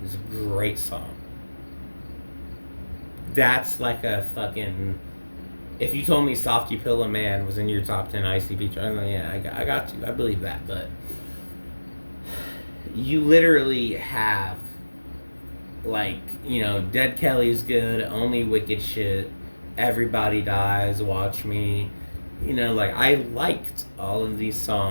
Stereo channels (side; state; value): both; inverted; correlation -1.00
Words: is a great song. That's like a fucking. If you told me Softy Pillow Man was in your top 10 ICP chart, yeah, I got you. I believe that. But you literally have, like, Dead Kelly's good, Only Wicked Shit, Everybody Dies, Watch Me. Like, I liked all of these